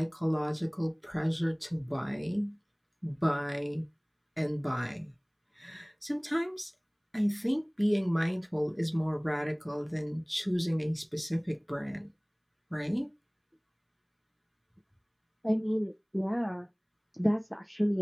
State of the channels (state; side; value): identical; both; correlation 1.00